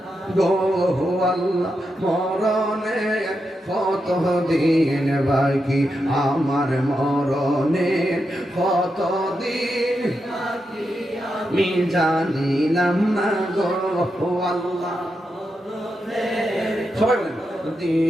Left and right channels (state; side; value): normal; both; correlation 0.86